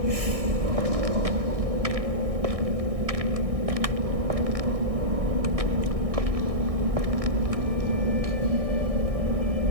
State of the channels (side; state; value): left; late; 1.6 ms